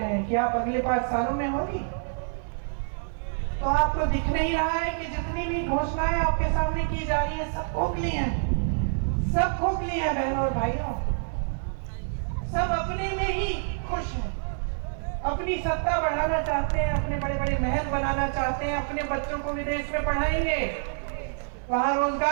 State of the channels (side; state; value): left; silent; 60 dB below the other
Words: हैं कि आप अगले 5 सालों में होगी? तो आपको दिख नहीं रहा है कि जितनी भी घोषणाएं आपके सामने की जा रही है सब खोखली हैं, सब खोखली हैं बहनों और भाइयों, सब अपने में ही खुश हैं, अपनी सत्ता बढ़ाना चाहते हैं, अपने बड़े बड़े महल बनाना चाहते हैं, अपने बच्चों को विदेश में पढ़ाएंगे, वहां